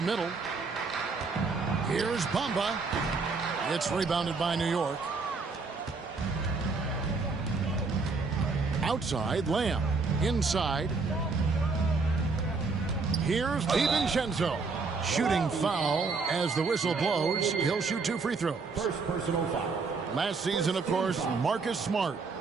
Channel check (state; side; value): quieter; left; 4.4 dB